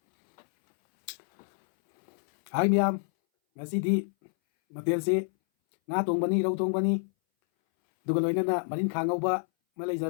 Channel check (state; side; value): silent; right; 59 dB below the other